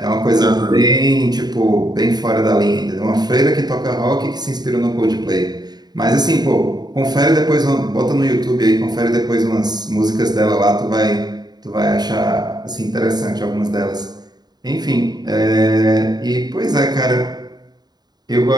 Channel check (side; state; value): left; late; 0.20 ms